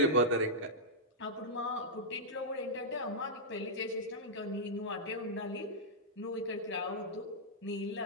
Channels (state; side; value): normal; both; correlation -0.09